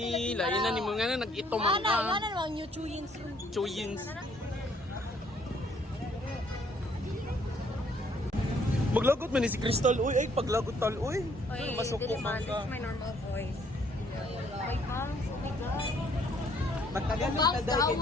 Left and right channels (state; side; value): normal; both; correlation 0.65